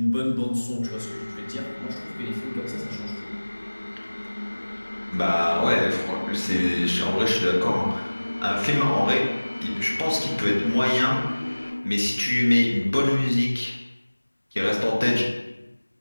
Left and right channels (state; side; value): inverted; both; correlation -1.00